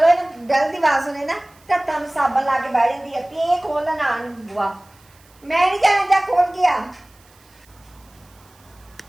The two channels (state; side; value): noise; right; hiss, 30 dB below the sound